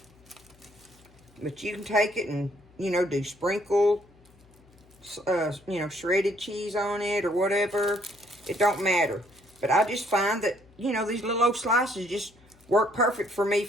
But you can take it and, you know, do sprinkle, you know, shredded cheese on it or whatever. It don't matter. But I just find that, you know, these little old slices just work perfect for me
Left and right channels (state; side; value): noise; left; hum, 28 dB below the sound